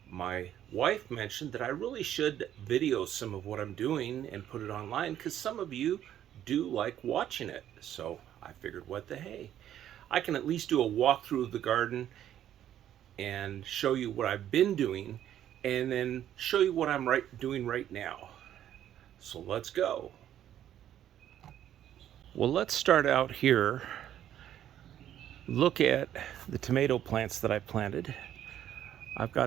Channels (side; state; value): left; quieter; 11.1 dB